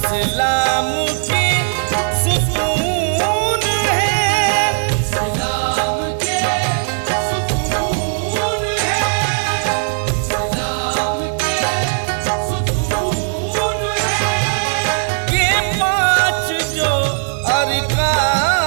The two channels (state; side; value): silent; left; 68 dB below the other